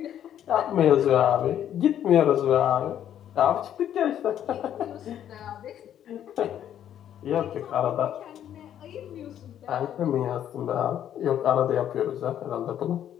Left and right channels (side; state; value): right; quieter; 10.4 dB